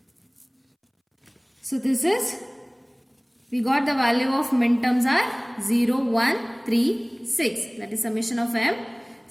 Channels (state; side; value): identical; both; correlation 1.00